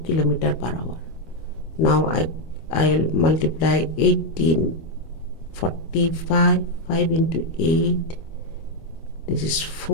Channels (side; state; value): right; late; 25 ms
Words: kilometer per hour. Now I'll multiply 18, 45, 5 into 8. This is